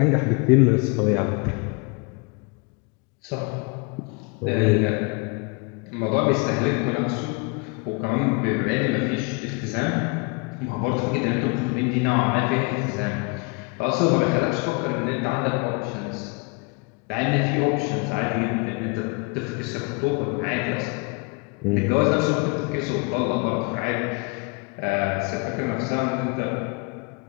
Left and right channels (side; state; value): right; quieter; 31.5 dB